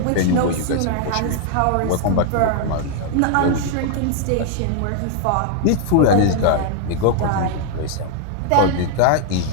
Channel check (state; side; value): different; both; correlation 0.00